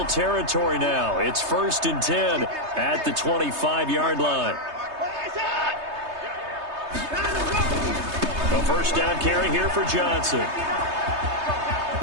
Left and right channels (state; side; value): late; left; 3.3 ms